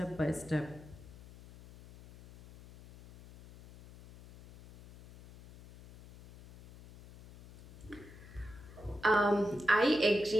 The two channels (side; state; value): left; noise; hum, 19 dB below the sound